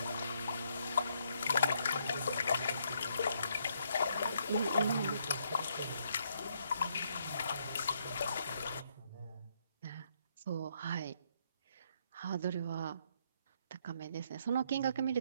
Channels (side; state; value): both; inverted; correlation -0.72